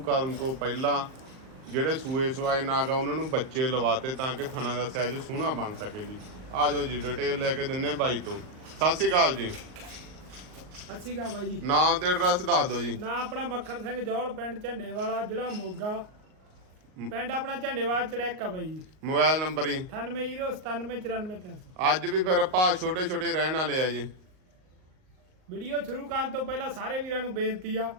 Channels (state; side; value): late; left; 38 ms